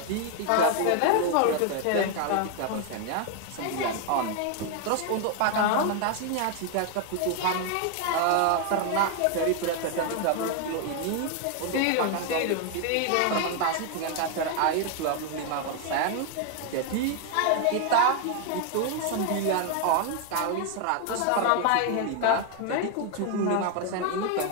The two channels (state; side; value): different; both; correlation 0.01